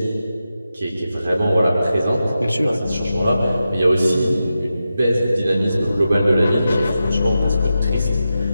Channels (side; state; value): both; inverted; correlation -0.90